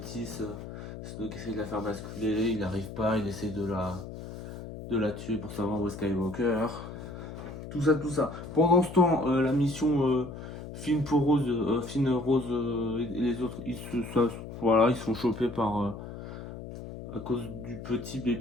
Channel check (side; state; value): left; noise; hum, 11 dB below the sound